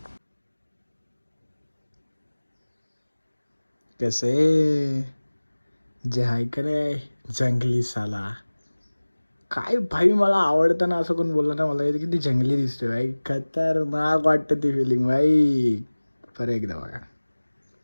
कसे जे आहे का रे जंगली साला, काय भाई मला आवडतं ना, असं कोण बोललं ना मला येतं किती जंगली दिसतोय भाई, खतरनाक वाटतं ती फिलिंग भाई. बरं एकदा बघा.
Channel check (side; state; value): both; inverted; correlation -1.00